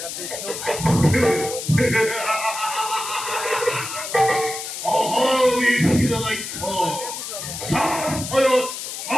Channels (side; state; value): left; noise; hiss, 7 dB below the sound